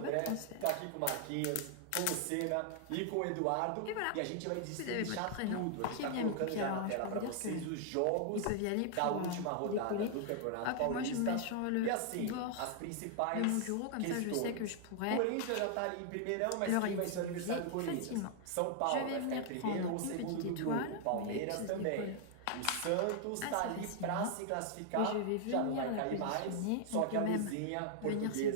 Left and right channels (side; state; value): both; different; correlation 0.00